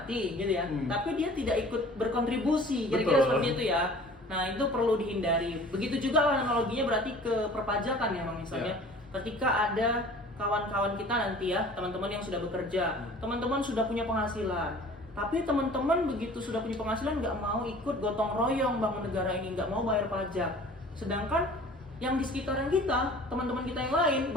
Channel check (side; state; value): both; normal; correlation 0.47